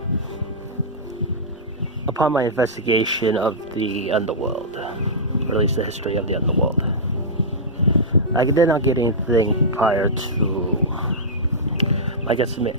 Upon my investigation of the underworld, or at least the history of the underworld, I did not get anything prior to my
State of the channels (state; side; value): normal; both; correlation -0.13